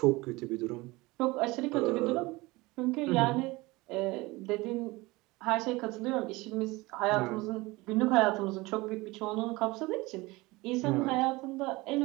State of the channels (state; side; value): quieter; left; 22.1 dB